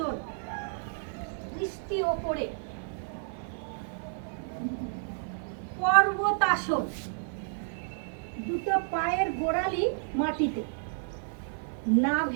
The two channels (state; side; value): silent; left; digital silence